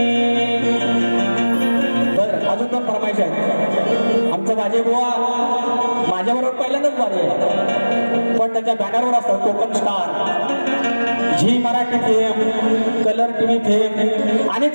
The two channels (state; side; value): inverted; both; correlation -1.00